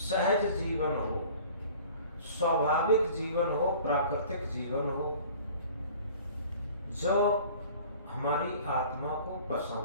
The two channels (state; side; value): inverted; both; correlation -0.47